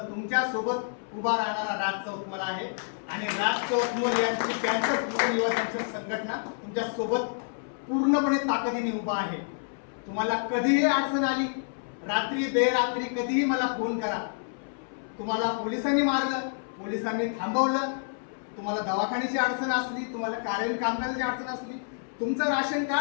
सोबत उभा राहणारा राज चौतमल आहे आणि राज चौतमल यांची कॅन्सर युवा संघटना तुमच्या सोबत पूर्णपणे ताकदीने उभा आहे. तुम्हाला कधीही अडचण आली, रात्री बेरात्री कधीही मला फोन करा. तुम्हाला पोलिसांनी मारलं, पोलिसांनी थांबवलं, तुम्हाला दवाखान्याची अडचण असली, तुम्हाला कार्यालयीन कामकाजाची अडचण असली, तुमचं राशन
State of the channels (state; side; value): silent; right; 59 dB below the other